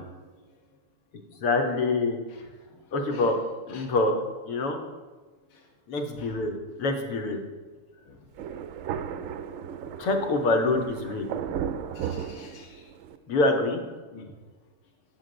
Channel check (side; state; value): right; late; 7.0 ms